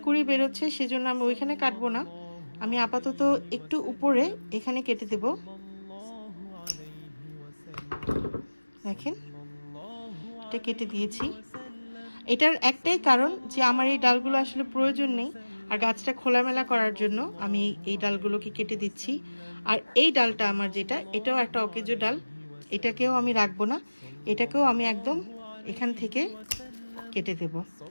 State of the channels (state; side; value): inverted; both; correlation -1.00